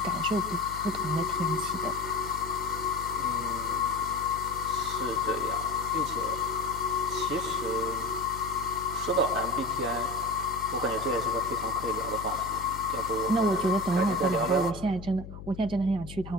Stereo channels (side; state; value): left; noise; hum, 12 dB below the sound